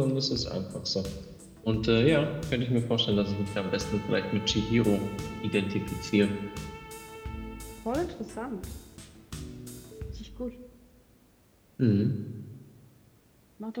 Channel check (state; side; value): identical; both; correlation 1.00